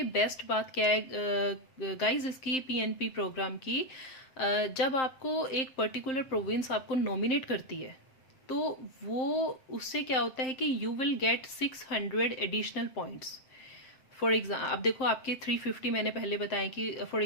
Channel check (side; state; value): right; late; 7.6 ms